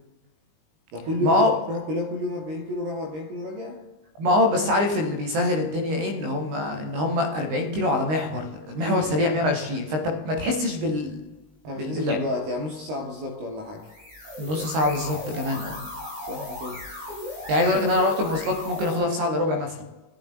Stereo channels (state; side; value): late; left; 19 ms